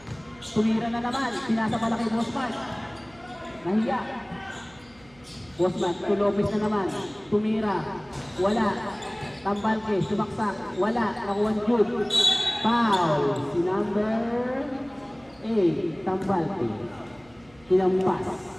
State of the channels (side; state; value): right; noise; hum, 27 dB below the sound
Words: Tumira na naman. Pinasa pala kay Bosman. Nahiya. Bosman, to Lopez na naman. Tumira. Wala. Tambalke, sumaksak. Wala. Nakuha ni Jude. Foul. Si number 8. Tambalke. Tinampas.